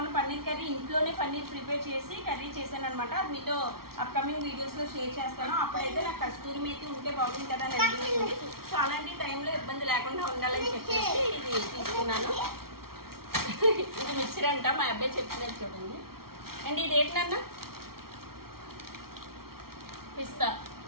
పన్నీర్ కర్రీ ఇంట్లోనే పన్నీర్ ప్రిపేర్ చేసి కర్రీ చేశాను అనమాట. అది మీతో అప్కమింగ్ వీడియోస్లో షేర్ చేస్తాను. అప్పుడైతే నాకు కస్తూరి మేతి ఉంటే బాగుంది కదా అని అనిపించింది. సో అలాంటి టైంలో ఇబ్బంది లేకుండా ఉండాలని చెప్పేసి ఇది తీసుకున్నాను. ఇది మిక్సర్ అంట, మా అబ్బాయి చెప్పినట్టు చూడండి. అండ్ ఇది ఏంటన్నా,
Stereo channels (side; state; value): left; late; 0.94 ms